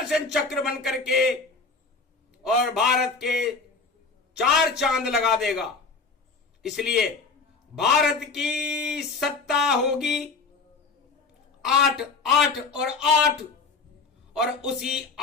चक्र बन करके और भारत के 4 चांद लगा देगा। इसलिए भारत की सत्ता होगी 8 8 और 8, और उसी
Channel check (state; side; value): quieter; right; 4.3 dB